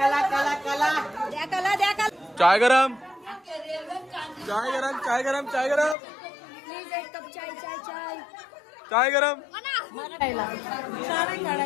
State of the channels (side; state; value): right; drops out; at 6.0 s